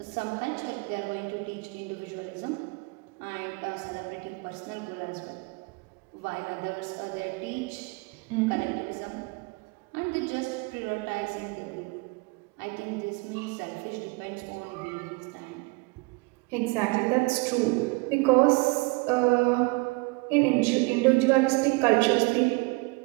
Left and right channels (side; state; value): left; quieter; 27.2 dB